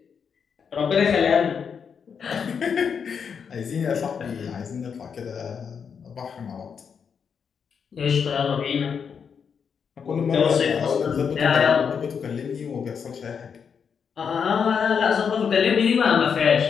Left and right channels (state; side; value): quieter; right; 6.7 dB